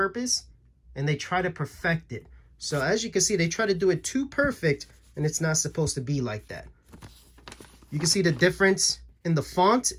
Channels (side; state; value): both; identical; correlation 1.00